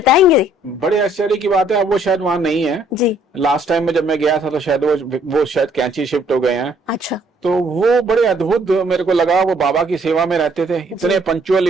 बड़े आश्चर्य की बात है, अब वो शायद वहां नहीं है। जी। लास्ट टाइम में जब मैं गया था तो शायद वो शायद कैंची शिफ्ट हो गए हैं। अच्छा। तो वो बड़े अद्भुत मेरे को लगा। वो बाबा की सेवा में रहते थे, इतने पंक्चुअल,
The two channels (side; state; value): both; normal; correlation 0.64